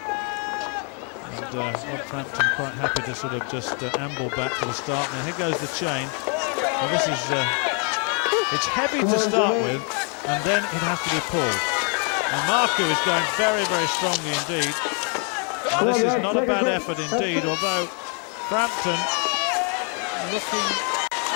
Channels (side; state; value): right; quieter; 38.8 dB